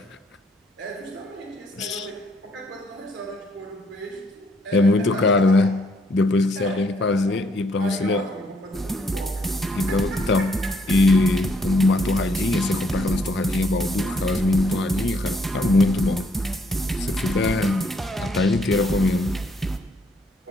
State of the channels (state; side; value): normal; both; correlation 0.69